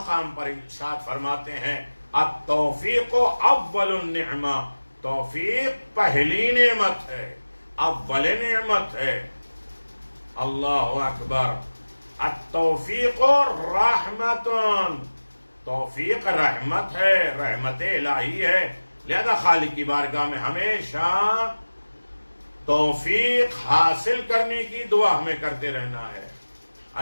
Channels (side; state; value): both; inverted; correlation -1.00